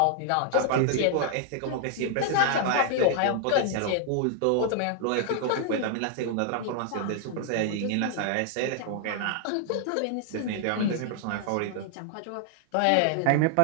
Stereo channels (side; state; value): both; different; correlation 0.00